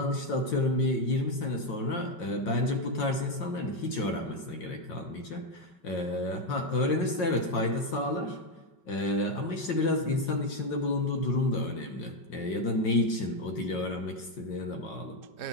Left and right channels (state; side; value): late; right; 5.5 ms